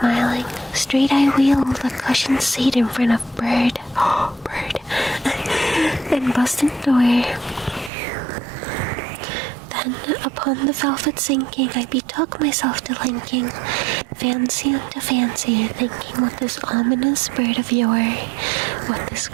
straight I wheeled the cushioned seat in front of bird, and busted door. Then upon the velvet sinking, I betook myself to linking, fancy unto fancy, thinking what this ominous bird of yore, what this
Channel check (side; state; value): left; drops out; at 7.9 s